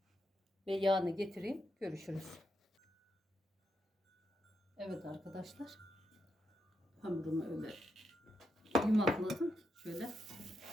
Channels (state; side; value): normal; both; correlation 0.83